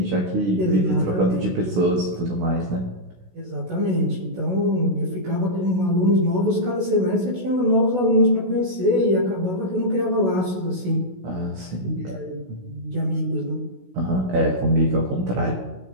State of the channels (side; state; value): left; late; 16 ms